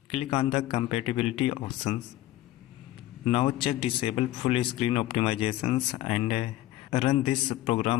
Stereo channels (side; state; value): right; quieter; 15.1 dB